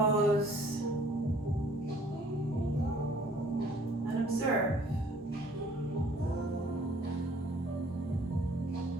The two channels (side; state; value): both; normal; correlation 0.57